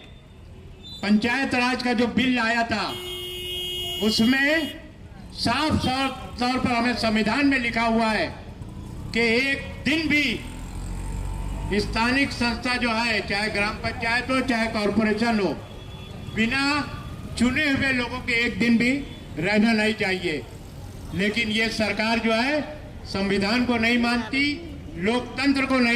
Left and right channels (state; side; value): identical; both; correlation 1.00